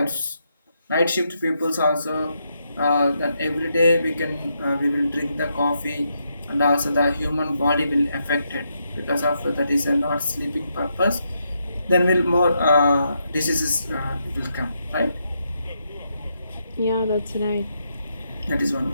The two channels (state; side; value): inverted; both; correlation -0.80